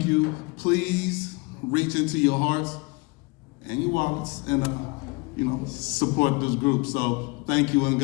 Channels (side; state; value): right; quieter; 27.3 dB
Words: you. Please reach into your hearts and your wallets and support this group. So thank you and